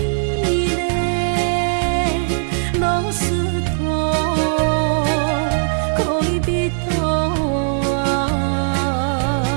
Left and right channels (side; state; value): left; silent; 63 dB below the other